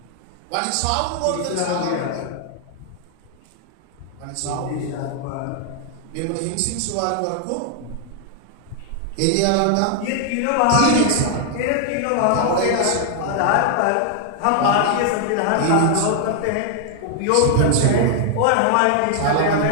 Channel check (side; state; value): both; different; correlation 0.00